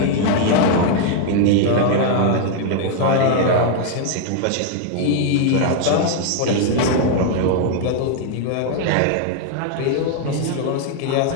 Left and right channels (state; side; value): different; both; correlation 0.00